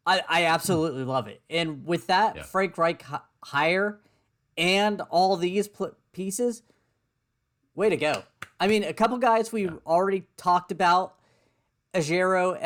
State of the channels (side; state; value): both; identical; correlation 1.00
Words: I absolutely love it. And with that Frank Reich hire and all these pieces, way to go. I mean, a couple guys we already talked about.